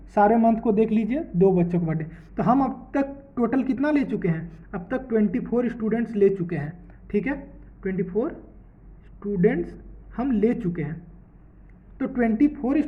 सारे मंथ को देख लीजिए, 2 बच्चों का बर्थडे। तो हम अब तक टोटल कितना ले चुके हैं, अब तक 24 स्टूडेंट्स ले चुके हैं। ठीक है, 24 स्टूडेंट्स हम ले चुके हैं। तो 24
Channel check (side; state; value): both; identical; correlation 1.00